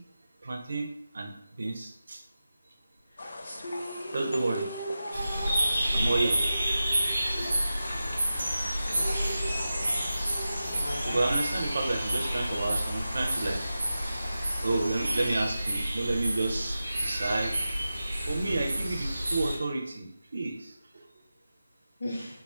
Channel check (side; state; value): both; inverted; correlation -0.92